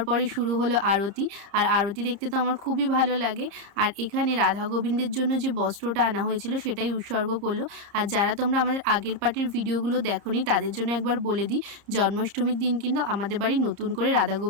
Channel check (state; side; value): late; left; 30 ms